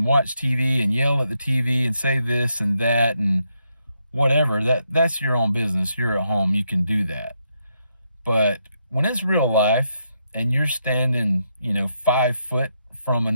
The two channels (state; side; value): inverted; both; correlation -0.80